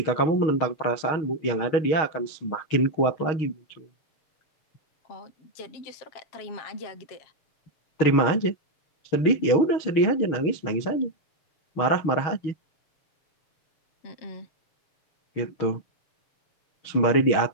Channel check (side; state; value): right; late; 6.4 ms